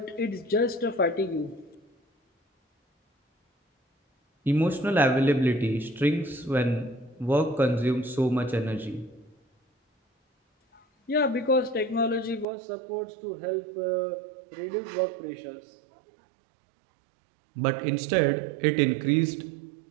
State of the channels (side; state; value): left; drops out; at 12.5 s